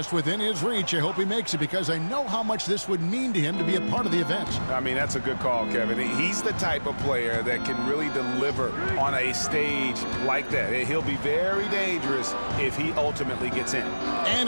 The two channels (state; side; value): inverted; both; correlation -1.00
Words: within his reach. I hope he makes it because I know how much this would mean to him to be a part of the event. I mean, that's a good call, Kevin. He's the type of player that can really deliver on a stage like that. He'll be very dangerous if he ultimately gets in.